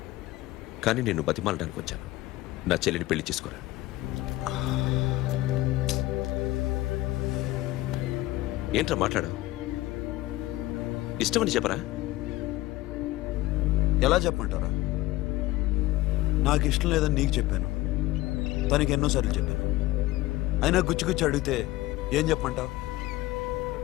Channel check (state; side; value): quieter; right; 17.8 dB